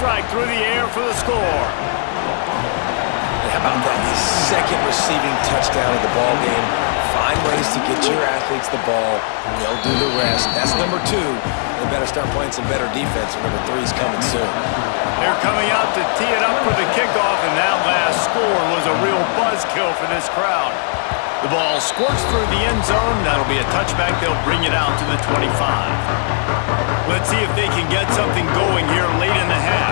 through the air for the score. And how about that? His 2nd receiving touchdown of the ball game. Find ways to get your athletes the ball. They'll do the rest. That's number 2. They better start playing some better defense. Number 3's coming soon. They're coming out to tee it up for the kickoff, and that last score was a real buzzkill for this crowd. The ball squirts through the end zone. That'll be a touchback. They'll bring it out to the 25. Let's see if they can get something going here late in the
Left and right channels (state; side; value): silent; right; digital silence